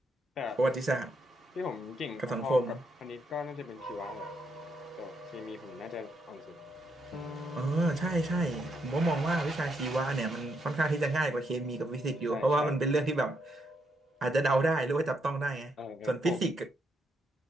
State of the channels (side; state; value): both; normal; correlation 0.77